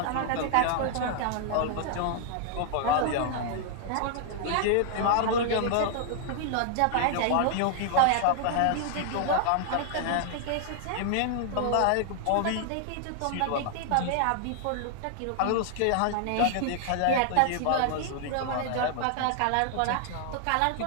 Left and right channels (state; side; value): different; both; correlation 0.00